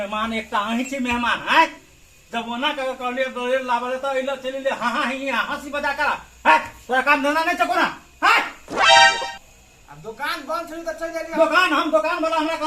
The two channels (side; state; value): both; identical; correlation 1.00